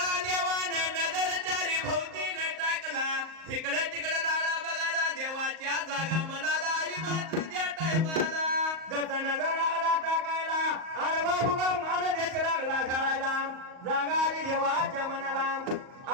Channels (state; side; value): late; left; 38 ms